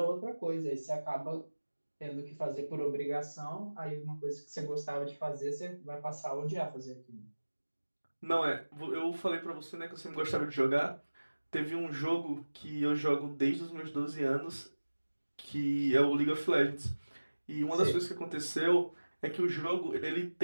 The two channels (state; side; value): inverted; both; correlation -1.00